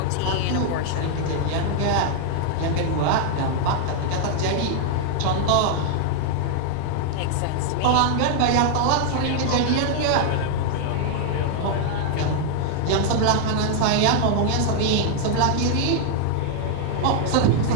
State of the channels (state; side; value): different; both; correlation 0.00